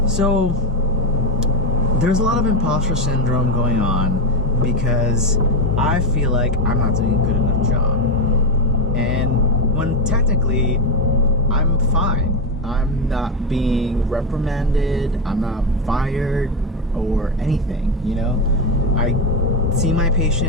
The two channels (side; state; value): both; normal; correlation 0.11